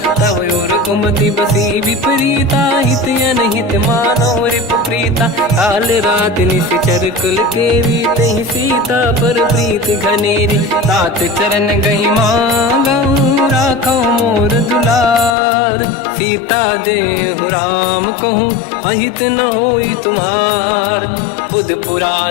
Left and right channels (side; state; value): right; drops out; at 15.4 s